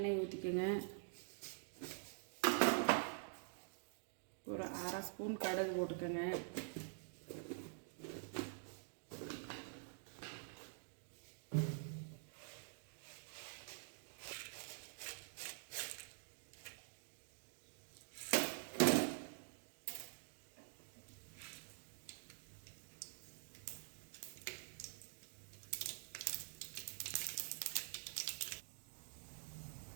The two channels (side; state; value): left; silent; digital silence